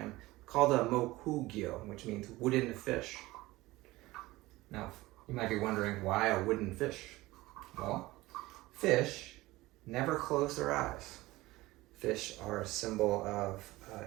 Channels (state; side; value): quieter; left; 19.2 dB